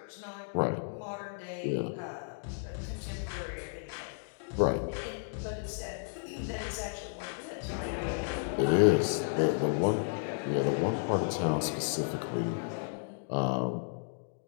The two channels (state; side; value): silent; right; digital silence